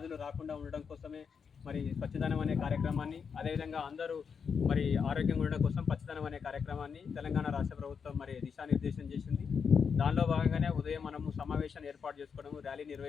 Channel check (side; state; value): right; quieter; 6.3 dB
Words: రాకుండా ఉండడం కోసమే మరి స్వచ్ఛదనం అనే కార్యక్రమాన్ని, అదేవిధంగా అందరూ మరి ఆరోగ్యంగా ఉండడం కోసం పచ్చదనం అనే కార్యక్రమాన్ని తెలంగాణ రాష్ట్ర ప్రభుత్వం మరి దిశానిర్దేశం చేసింది. దానిలో భాగంగానే ఉదయం మనము సమావేశాన్ని ఏర్పాటు చేసుకోవడము, ర్యాలీ